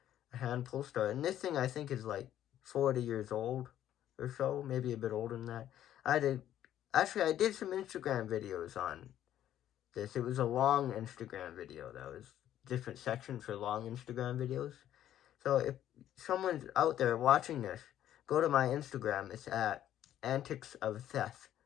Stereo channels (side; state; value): right; quieter; 11.7 dB